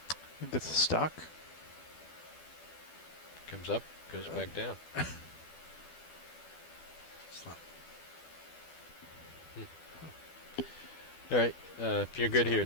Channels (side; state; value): right; late; 12 ms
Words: think it's a stock. Comes up, goes Yeah. back down. It's not. All right. If you're good here,